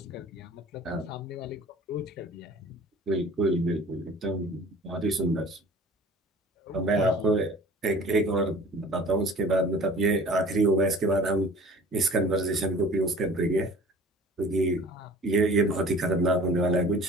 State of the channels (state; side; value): normal; both; correlation 0.46